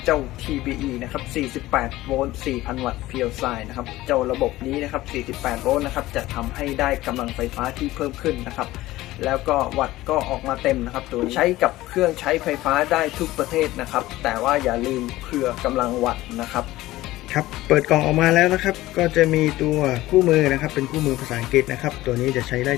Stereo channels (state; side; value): quieter; right; 17.0 dB